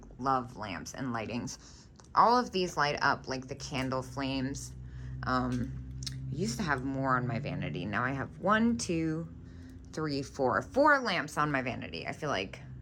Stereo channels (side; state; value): both; identical; correlation 1.00